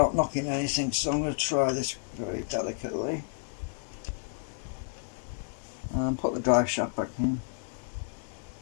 knocking anything, so I'm going to try this very delicately and put the drive shaft back in.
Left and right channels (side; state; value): right; silent; digital silence